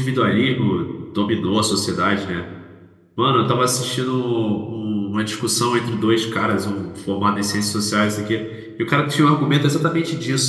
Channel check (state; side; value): identical; both; correlation 1.00